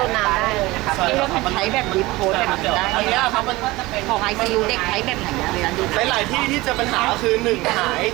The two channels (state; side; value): quieter; left; 20.3 dB